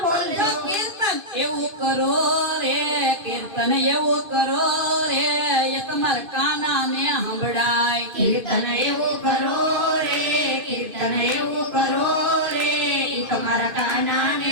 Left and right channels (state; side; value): late; left; 2.5 ms